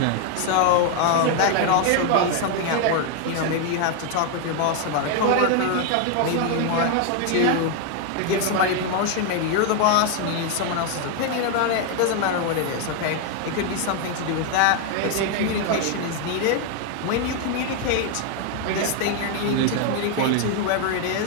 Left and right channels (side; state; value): both; different; correlation 0.01